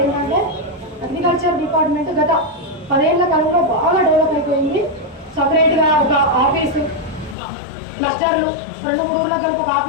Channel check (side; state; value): right; drops out; at 7.4 s